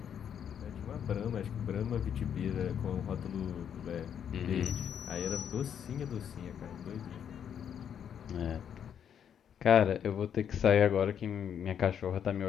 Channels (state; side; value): quieter; right; 8.6 dB